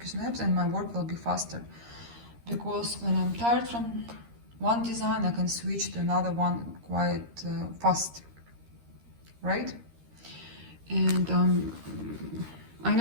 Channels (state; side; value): late; left; 13 ms